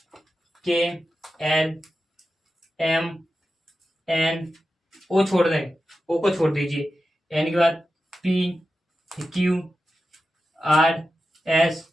के, एल, एम, एन, ओ छोड़ दें, ओ को छोड़ दीजिए, एन के बाद P, Q, R, S,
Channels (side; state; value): both; normal; correlation 0.92